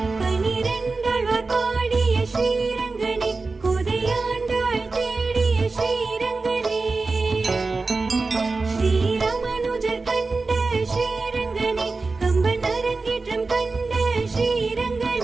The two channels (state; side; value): quieter; left; 3.9 dB